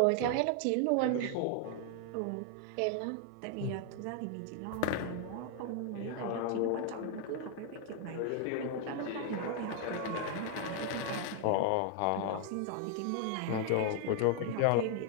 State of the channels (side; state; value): both; different; correlation 0.00